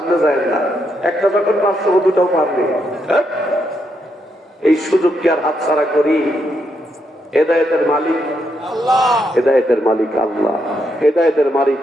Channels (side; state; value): both; normal; correlation 0.79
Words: যায় না। একটা যখন পারছো, 2টাও পারবে। এই সুযোগকে আর হাতছাড়া করি? হেদায়েতের মালিক আল্লাহ, হেদায়েতের মালিক আল্লাহ। হেদায়েতের মালিক